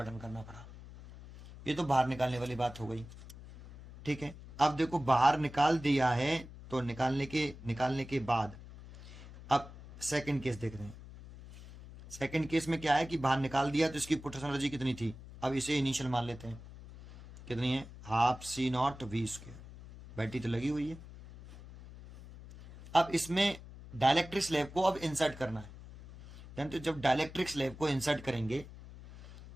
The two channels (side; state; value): left; noise; hum, 16 dB below the sound